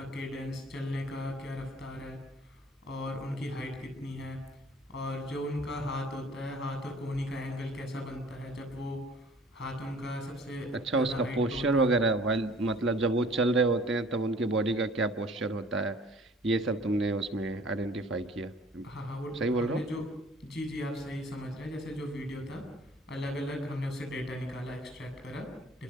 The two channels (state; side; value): normal; both; correlation 0.51